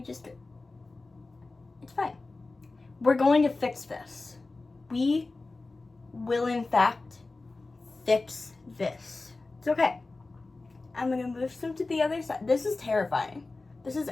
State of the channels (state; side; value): quieter; right; 3.4 dB